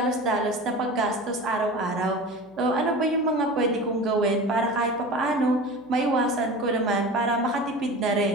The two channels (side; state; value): left; noise; hum, 30 dB below the sound